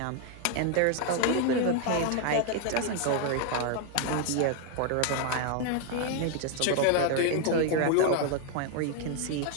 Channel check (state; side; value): different; both; correlation 0.01